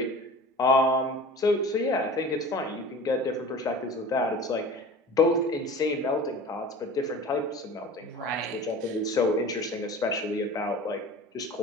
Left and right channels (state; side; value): normal; both; correlation 0.39